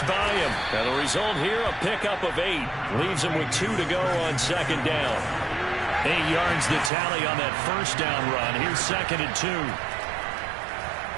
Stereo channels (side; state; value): left; drops out; at 6.9 s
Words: by him. And the result here, a pickup of 8. Leaves him with 2 to go on second down. 8 yards the tally on that first down run. Here's 2nd and 2.